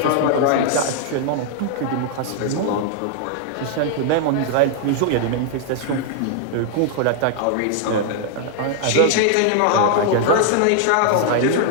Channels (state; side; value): different; both; correlation 0.00